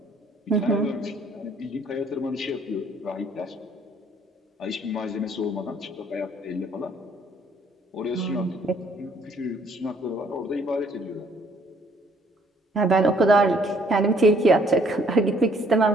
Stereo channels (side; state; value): both; normal; correlation 0.63